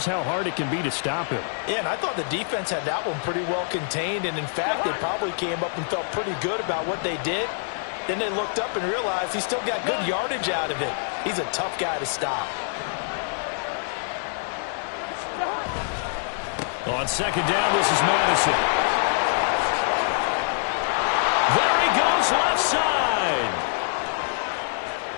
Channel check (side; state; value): right; silent; 59 dB below the other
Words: how hard it can be to stop him. Yeah, and I thought the defense had that one pretty well contained, and in fact, they probably came up and felt pretty good about what they did. Then they looked up and realized he still got good yardage out of it. He's a tough guy to stop. On 2nd down, this is Madison. There he goes, left side.